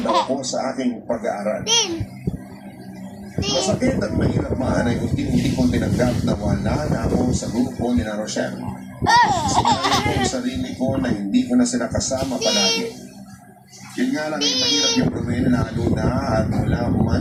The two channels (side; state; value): both; identical; correlation 1.00